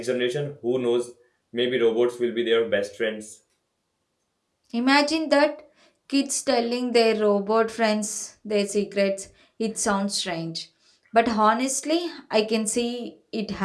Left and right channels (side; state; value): both; identical; correlation 1.00